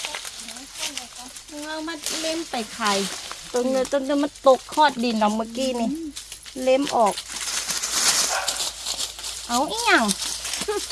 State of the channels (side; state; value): both; identical; correlation 1.00